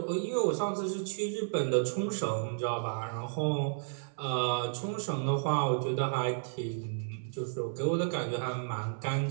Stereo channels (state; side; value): silent; left; 56 dB below the other